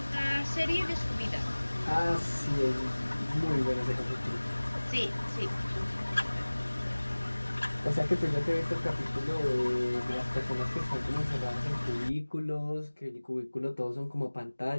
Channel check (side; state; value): both; inverted; correlation -1.00